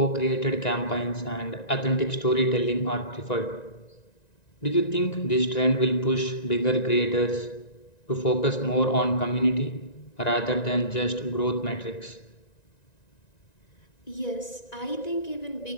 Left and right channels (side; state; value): right; late; 1.9 ms